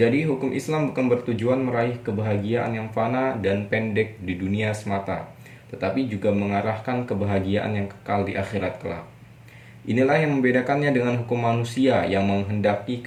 hukum Islam bukan bertujuan meraih kebahagiaan yang fana dan pendek di dunia semata, tetapi juga mengarahkan kebahagiaan yang kekal di akhirat kelak. Inilah yang membedakannya dengan hukum manusia yang menghendaki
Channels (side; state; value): both; identical; correlation 1.00